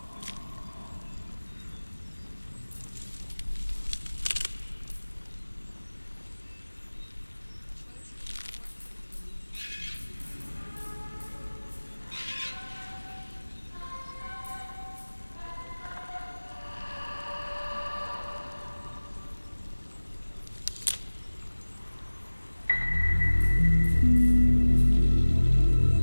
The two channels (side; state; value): both; inverted; correlation -1.00